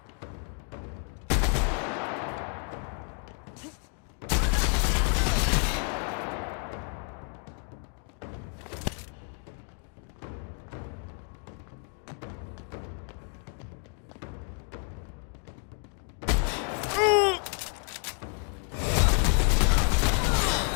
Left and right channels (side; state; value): right; quieter; 40.0 dB